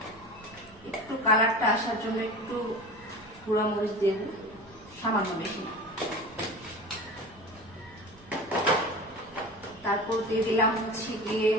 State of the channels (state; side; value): noise; right; rumble, 24 dB below the sound